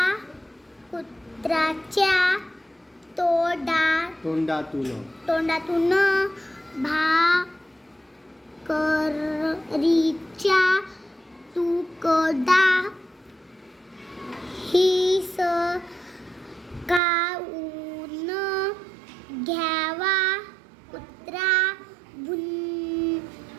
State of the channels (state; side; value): drops out; left; at 17.0 s